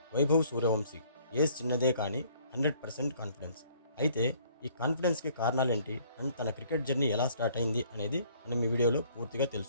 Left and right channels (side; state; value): both; inverted; correlation -0.59